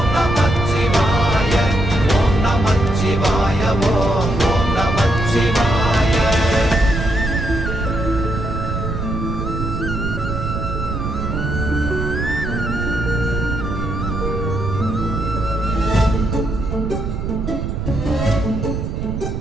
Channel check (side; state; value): right; noise; rumble, 3 dB below the sound